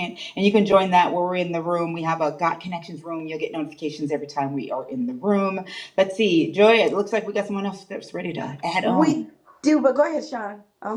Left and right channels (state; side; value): identical; both; correlation 1.00